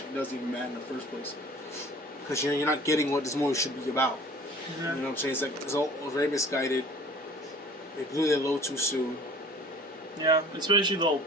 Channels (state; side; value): normal; both; correlation 0.47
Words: doesn't even matter in the first place because you're not getting what this movie should be about. You know what I'm saying? It's all very misguided. They blew their load too soon. Yeah, especially the whole